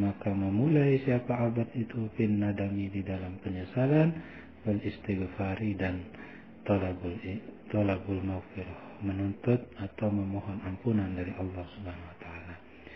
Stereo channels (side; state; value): both; identical; correlation 1.00